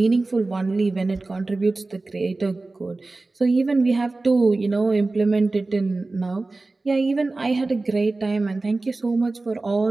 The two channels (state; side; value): quieter; left; 3.3 dB